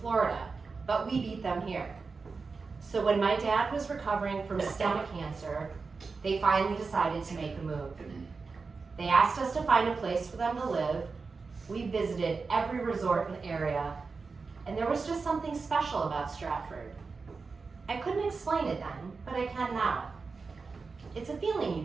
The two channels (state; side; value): quieter; left; 4.5 dB